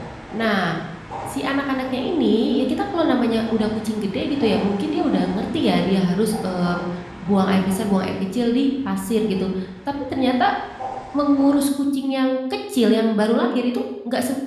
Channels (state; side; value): identical; both; correlation 1.00